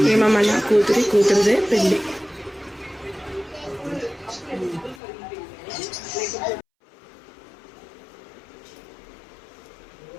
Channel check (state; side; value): drops out; right; at 5.0 s